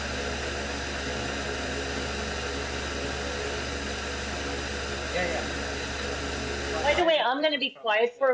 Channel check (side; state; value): both; identical; correlation 1.00